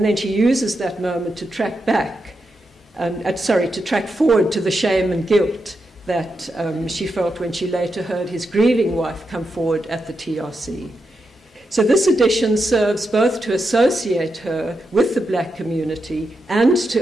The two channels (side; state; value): both; normal; correlation 0.86